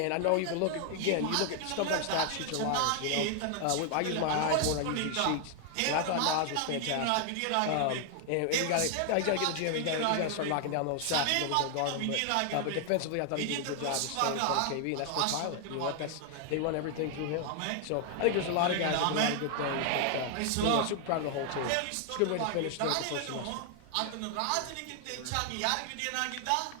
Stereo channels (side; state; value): both; different; correlation 0.00